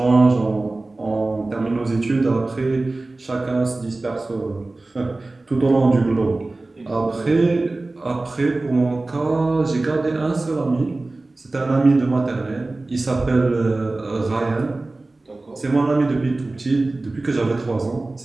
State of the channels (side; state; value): left; quieter; 3.1 dB